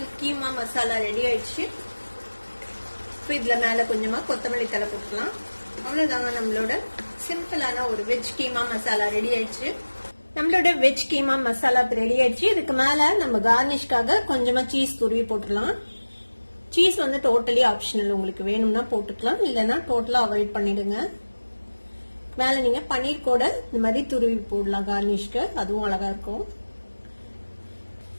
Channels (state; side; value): inverted; both; correlation -1.00